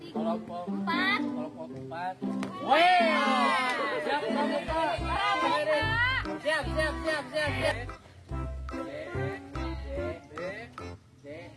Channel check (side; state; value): both; identical; correlation 1.00